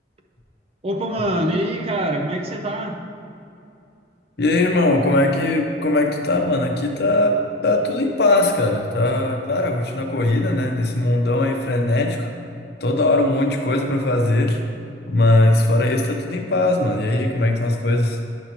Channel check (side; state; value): both; normal; correlation 0.39